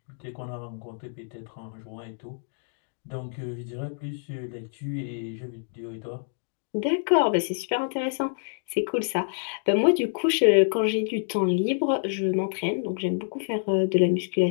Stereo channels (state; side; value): silent; right; digital silence